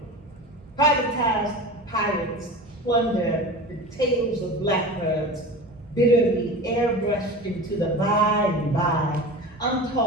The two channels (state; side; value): normal; both; correlation 0.32